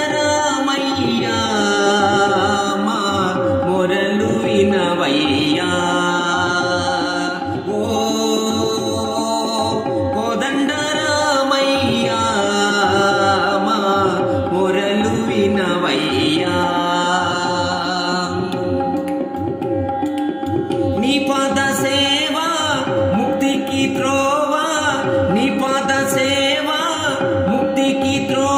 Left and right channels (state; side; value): identical; both; correlation 1.00